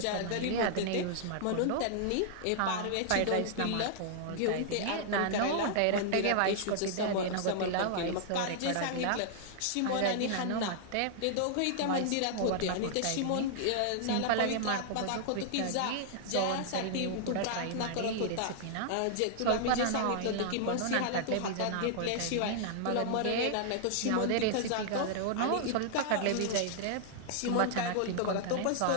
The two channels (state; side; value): different; both; correlation -0.01